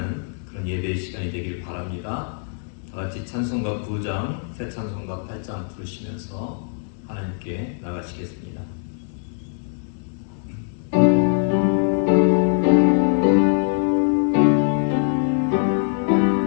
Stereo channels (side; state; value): right; silent; 61 dB below the other